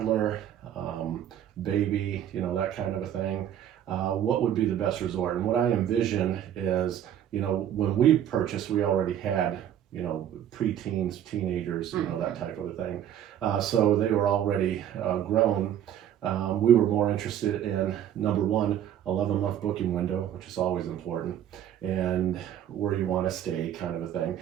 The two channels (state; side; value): quieter; left; 10.5 dB